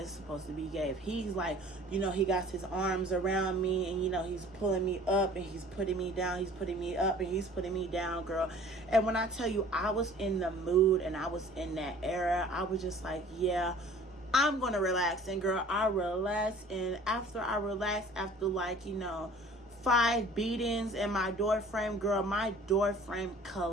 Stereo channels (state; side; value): normal; both; correlation 0.49